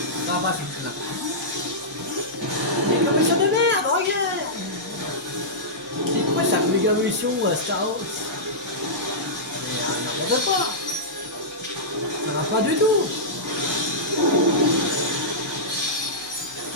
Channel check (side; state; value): both; normal; correlation -0.14